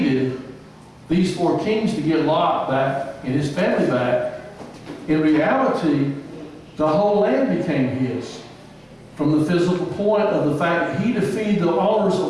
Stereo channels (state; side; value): identical; both; correlation 1.00